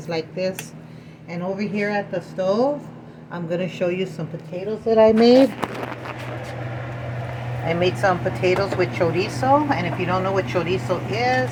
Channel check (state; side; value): identical; both; correlation 1.00